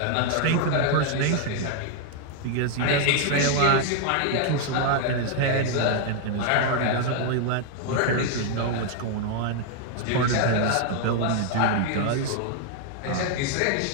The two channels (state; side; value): different; both; correlation 0.00